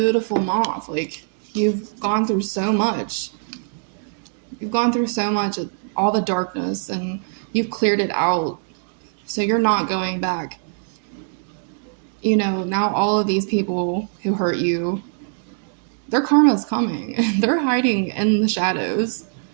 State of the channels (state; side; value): silent; left; 64 dB below the other